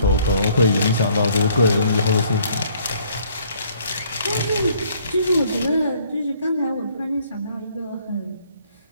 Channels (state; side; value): inverted; both; correlation -0.62